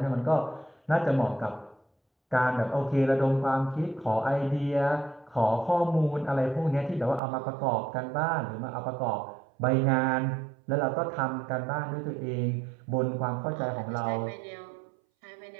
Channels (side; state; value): left; drops out; at 7.2 s